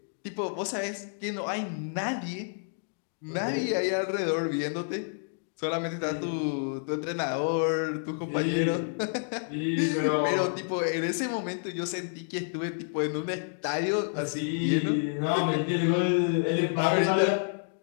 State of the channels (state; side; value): silent; right; digital silence